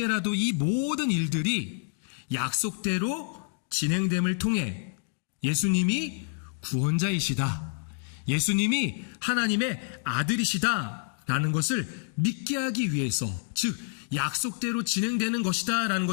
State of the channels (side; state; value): right; silent; 59 dB below the other